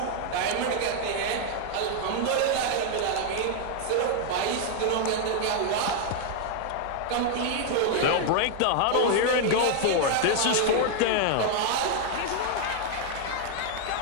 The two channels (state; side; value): different; both; correlation 0.00